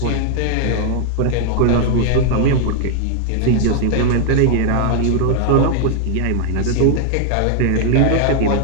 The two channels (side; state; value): both; different; correlation 0.00